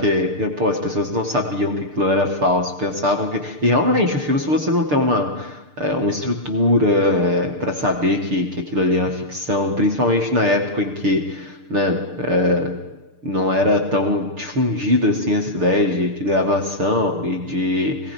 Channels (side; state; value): left; late; 6.7 ms